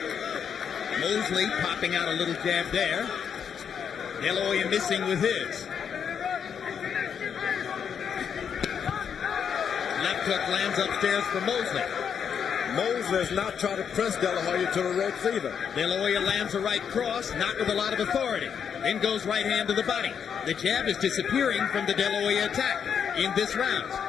Mosley popping out a little jab there. De La Hoya missing with his. Left hook lands upstairs for Mosley. Mosley is not trying to press De La Hoya to the ropes either. De La Hoya lands a right cross, not with a lot of authority. Then goes right hand to the body. The jab is disappearing from the De La Hoya attack in this round.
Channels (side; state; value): right; quieter; 7.5 dB